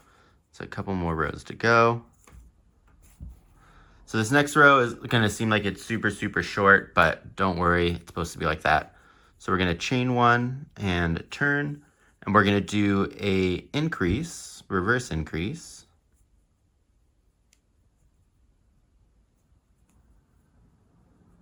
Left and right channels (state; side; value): identical; both; correlation 1.00